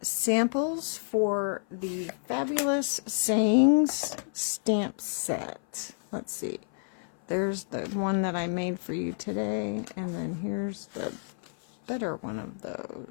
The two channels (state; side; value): silent; right; 55 dB below the other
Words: samples for the Fabulous Sayings stamp set. Let's see. There's the one that I made for you today, and then here's the better one of